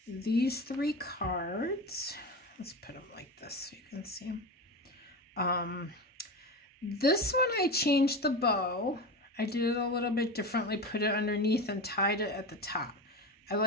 these 3 cards. Let's put them like this so you can see them. This one I changed the bow. I did it a little bit differently, put it underneath and tied it at the top. I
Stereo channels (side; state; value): both; normal; correlation 0.24